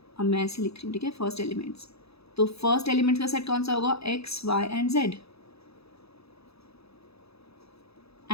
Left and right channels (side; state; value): right; late; 0.78 ms